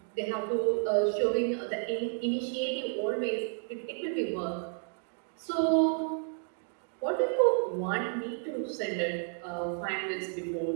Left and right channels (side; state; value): left; silent; 57 dB below the other